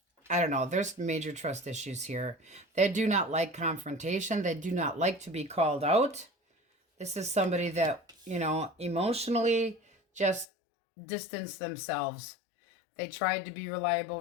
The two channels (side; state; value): right; drops out; at 10.5 s